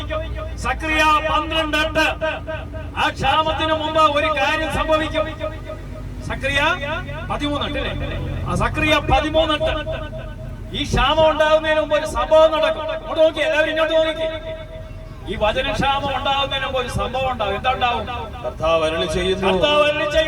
സക്രിയ 12:8. ആ ക്ഷാമത്തിന് മുമ്പ് ഒരു കാര്യം സംഭവിക്കും. സക്രിയ 13:8. ആ സക്രിയ 13:8. ഈ ക്ഷാമം ഉണ്ടാകുന്നതിന് മുമ്പ് ഒരു സംഭവം നടക്കും. ഇങ്ങോട്ട് നോക്കി, എല്ലാവരും ഇങ്ങോട്ട് നോക്കി. ഈ വചനക്ഷാമം ഉണ്ടാകുന്നതിന് മുമ്പ് ഒരു സംഭവം ഉണ്ടാകും. എന്താ ഉണ്ടാവും? കർത്താവ് അരുളി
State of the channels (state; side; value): identical; both; correlation 1.00